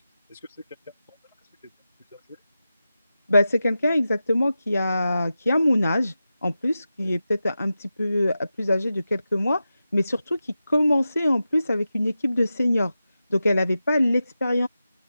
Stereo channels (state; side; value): inverted; both; correlation -0.92